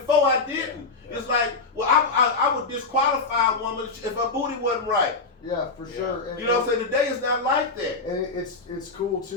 I didn't. Yeah. It's like, well, I would disqualify a woman if her booty wasn't right. Yeah, for sure. And, You know what I'm saying? Today is not like that. and it's cool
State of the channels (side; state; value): right; quieter; 4.0 dB